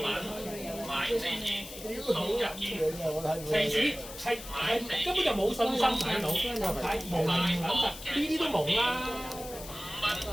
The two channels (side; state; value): left; noise; hiss, 13 dB below the sound